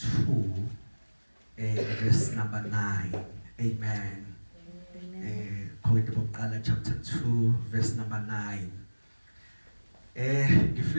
verse number 9. Amen. Korinte bokuqala chapter 2 verse number 9.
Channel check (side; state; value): both; inverted; correlation -1.00